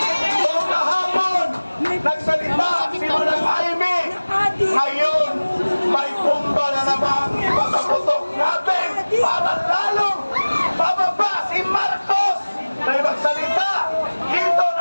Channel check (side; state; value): both; inverted; correlation -1.00